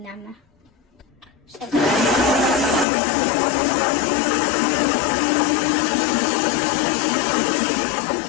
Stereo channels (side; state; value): right; drops out; at 2.9 s